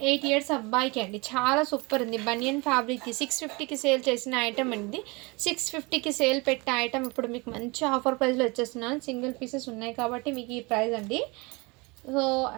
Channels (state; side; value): quieter; left; 26.6 dB